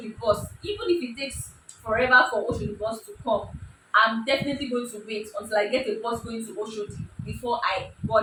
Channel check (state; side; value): identical; both; correlation 1.00